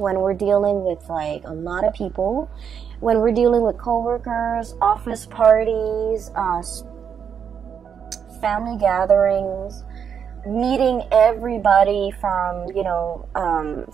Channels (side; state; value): left; quieter; 7.5 dB